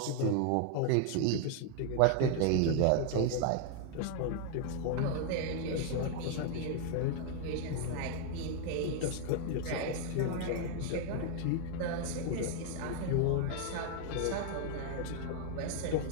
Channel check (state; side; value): different; both; correlation 0.00